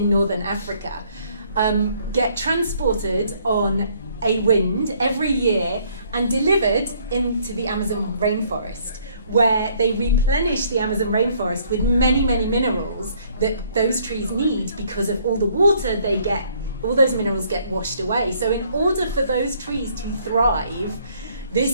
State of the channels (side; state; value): both; inverted; correlation -0.64